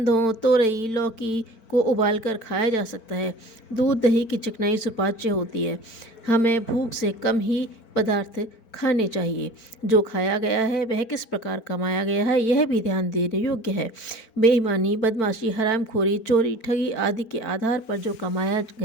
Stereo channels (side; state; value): right; late; 4.5 ms